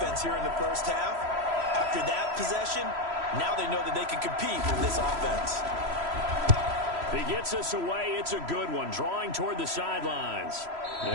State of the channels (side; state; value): left; late; 3.0 ms